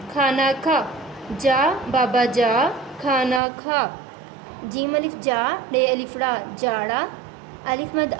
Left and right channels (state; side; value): drops out; left; at 3.4 s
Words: खाना खा, जा बाबा जा खाना खा, जीम अलिफ जा रे अलिफ ला जाड़ा, अलिफ मद